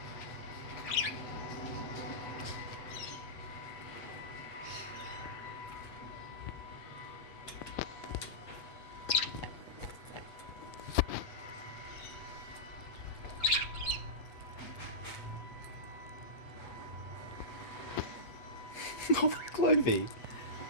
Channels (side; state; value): right; late; 7.7 ms